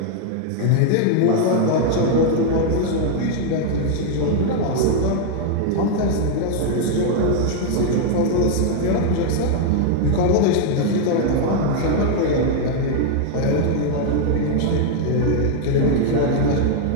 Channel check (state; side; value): different; both; correlation 0.00